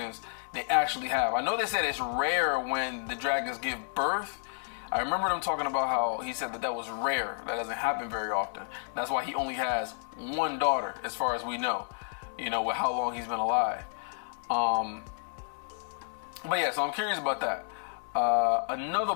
they actually have. I know they said it's rare when the dragons give birth. I remember them talking about how he said that was rare. That doesn't happen very often. That's why he only has 1 daughter, as far as we know, you know, with how long he's been alive. But yeah, so I'm curious about that. Another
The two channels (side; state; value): right; silent; digital silence